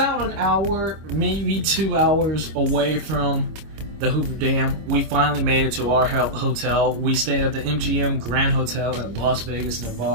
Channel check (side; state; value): left; late; 26 ms